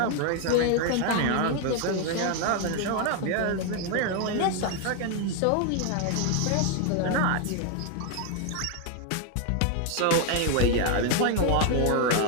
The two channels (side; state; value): both; different; correlation 0.01